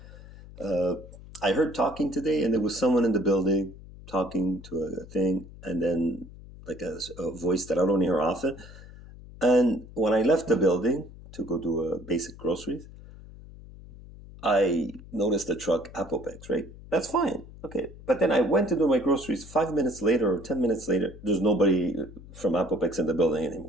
I heard talking today, and there was someone in the building talking to a thing, and then like a voice that I don't hear often. And when I left the building to go do basic groceries, I noticed the truck Apopex, right? That's fine. Okay. But then I went to do my groceries 5 minutes later or 10 minutes later. There's nobody from Apopex in the building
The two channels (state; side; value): noise; left; hum, 17 dB below the sound